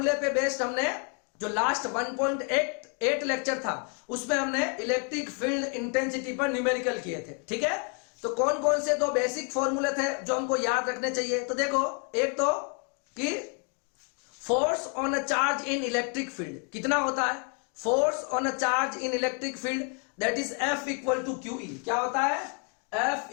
पे बेस्ड हमने जो लास्ट 1.8 लेक्चर था उसमें हमने इलेक्ट्रिक फील्ड इंटेंसिटी पर न्यूमेरिकल किए थे। ठीक है, तो कौन कौन से 2 बेसिक फॉर्मूले थे जो हमको याद रखने चाहिए? तो देखो, एक तो कि force on a charge in electric field कितना होता है? Force on a charge in electric field that is F equal to QE। क्या होता है? F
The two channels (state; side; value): quieter; right; 37.8 dB